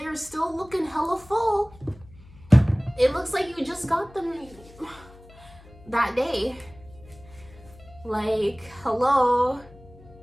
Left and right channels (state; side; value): noise; left; hum, 22 dB below the sound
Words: still looking hella full. It looks like you just got them that day. Like, hello.